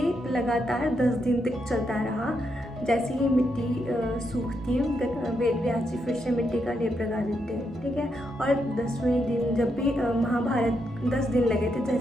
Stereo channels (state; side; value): normal; both; correlation 0.81